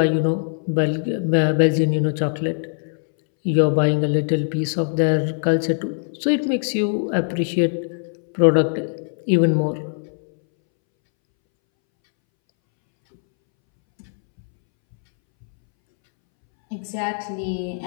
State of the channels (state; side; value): silent; right; 64 dB below the other